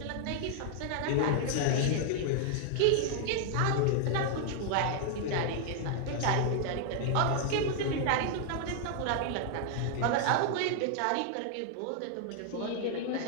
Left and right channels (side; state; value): both; different; correlation 0.00